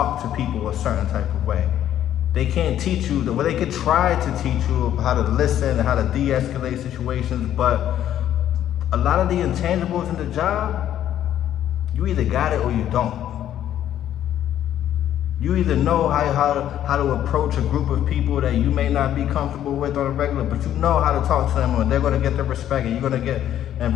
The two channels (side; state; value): right; quieter; 11.2 dB